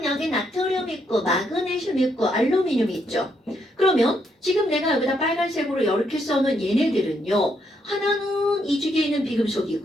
여기 나트륨 있고 마그네슘 있고 알루미늄 있죠. 그러면 지금 내가 여기다 빨간색으로 이렇게 써놓은 얘네들은요. 하나는 2주기에 있는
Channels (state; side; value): normal; both; correlation 0.76